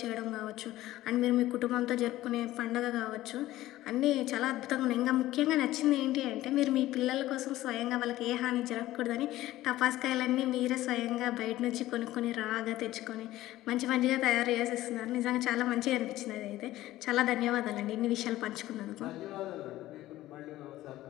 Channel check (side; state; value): right; quieter; 15.6 dB